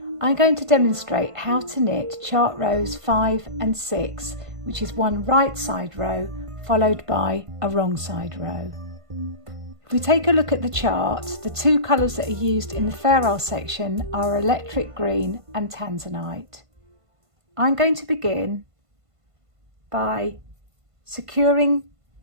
I'm going to demonstrate how to knit chart rows 5 and 6, which is one right side row followed by a wrong side row. If we take a look at the chart, the two colours that are used in the Fairisle section are electric green and tanzanite. I'm going to begin by securing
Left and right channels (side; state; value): left; late; 1.5 ms